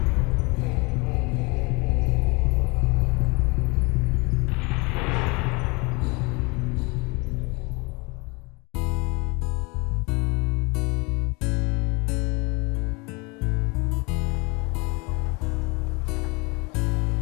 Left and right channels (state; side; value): quieter; right; 27.8 dB